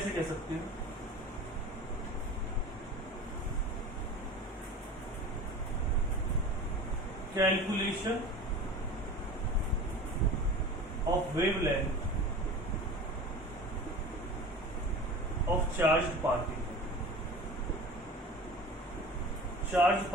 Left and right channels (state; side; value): normal; both; correlation 0.37